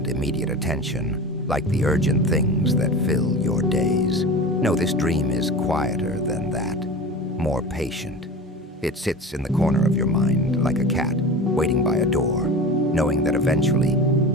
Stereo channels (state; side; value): normal; both; correlation 0.32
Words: immediate attention, like the urgent things that fill your days. No, this dream is quieter than that, more patient. It sits in the corner of your mind like a cat, waiting by a door, knowing that eventually,